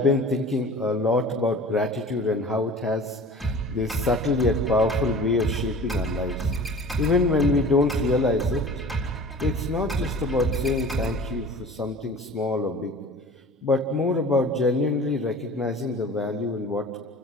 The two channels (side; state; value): both; normal; correlation 0.41